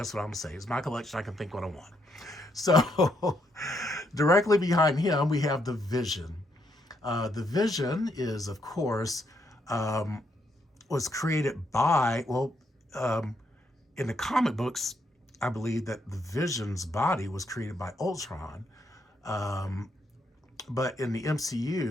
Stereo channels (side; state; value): both; normal; correlation 0.76